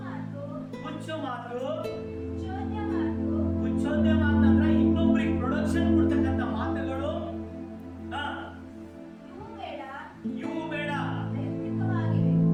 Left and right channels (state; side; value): identical; both; correlation 1.00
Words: ಹುಚ್ಚು ಮಾತು. ಹುಚ್ಚೋದ್ಯ ಮಾತಂದ್ರೆ ಇನ್ನೊಬ್ರಿಗೆ ಪ್ರೊಡಕ್ಷನ್ ಕೊಡ್ತಕ್ಕಂಥ ಮಾತುಗಳು. ಇವು ಬೇಡ.